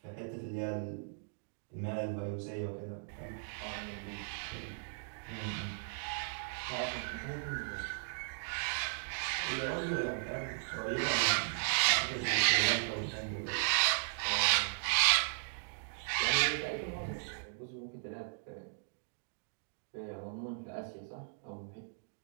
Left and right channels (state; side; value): silent; left; digital silence